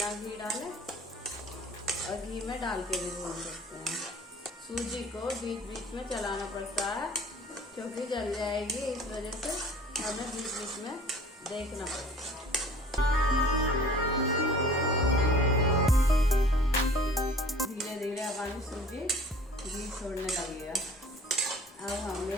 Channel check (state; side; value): normal; both; correlation 0.47